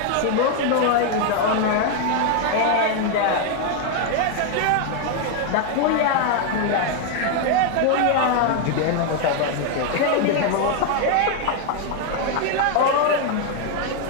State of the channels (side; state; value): both; different; correlation 0.01